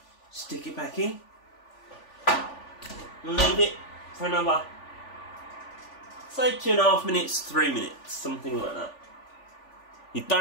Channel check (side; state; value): right; late; 3.4 ms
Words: stick it back in and leave it for another, say 2.5 minutes, 3 minutes, something like that. You